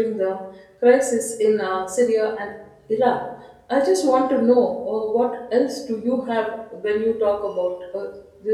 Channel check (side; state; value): both; identical; correlation 1.00